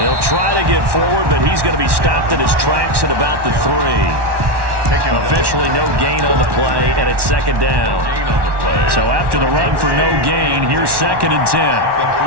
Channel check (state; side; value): late; left; 1.1 ms